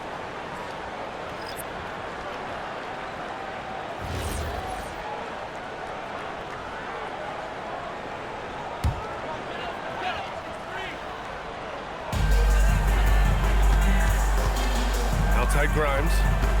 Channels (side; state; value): both; identical; correlation 1.00